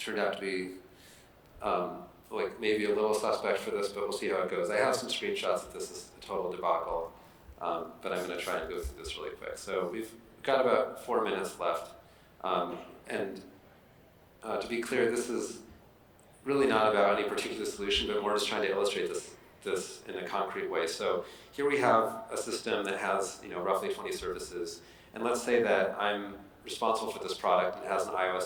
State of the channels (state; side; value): identical; both; correlation 1.00